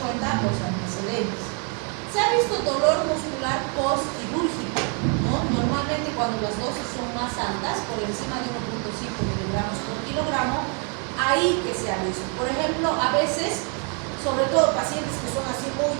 los antecedentes. Se ha visto dolor muscular postquirúrgico, ¿no? Normalmente cuando las dosis son más altas, por encima de 1.5 miligramos por kilogramo, ahí que se ha visto. Por ejemplo, a veces, sobre todo pacientes que son así muy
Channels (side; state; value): left; quieter; 38.3 dB